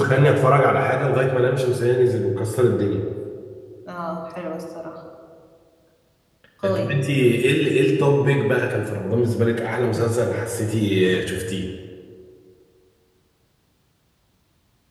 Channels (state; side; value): identical; both; correlation 1.00